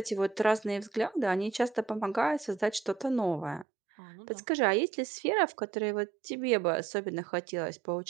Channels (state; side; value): drops out; left; at 3.7 s